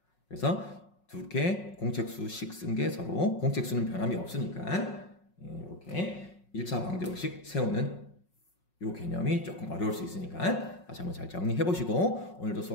그래서 두 개 공책수식 쓴 게 서로 공책수는 변함이 없으니까 이렇게 1차 방정식 세우는 이 개념이 조금 어려울 수 있으니까 다시 한번 잘 정리해 보시고 오늘도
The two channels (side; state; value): right; late; 5.5 ms